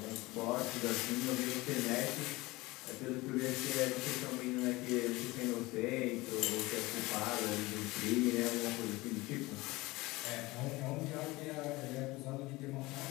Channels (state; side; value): quieter; right; 21.2 dB